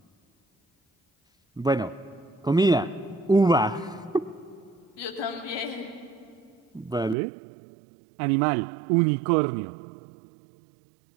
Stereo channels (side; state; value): left; drops out; at 7.2 s